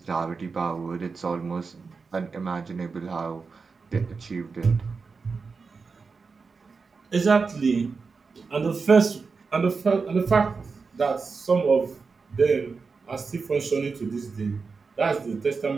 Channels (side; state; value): left; quieter; 4.8 dB